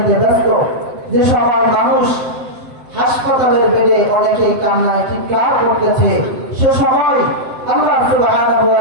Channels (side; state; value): left; late; 7.7 ms